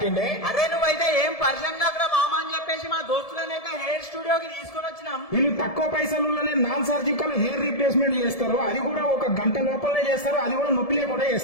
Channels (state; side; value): late; right; 1.7 ms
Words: అరే నువ్వైతే ఏం పర్సన్ కాకరా మామ అని చెప్పేసి మా దోస్తులనైతే హెయిర్ స్టూడియోకి తీసుకుని వచ్చినాం. వీళ్ళు తక్కువ పైసలులోనే నాన్ సర్జికల్ హెయిర్ రీప్లేస్మెంట్ చేస్తారు. అది కూడా ఒక గంట లోపలనే చేస్తారు. అది కూడా నొప్పి లేకుండా